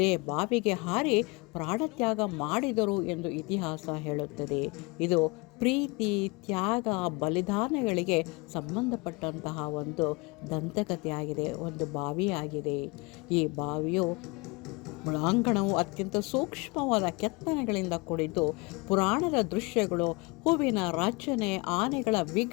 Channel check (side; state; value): right; quieter; 27.3 dB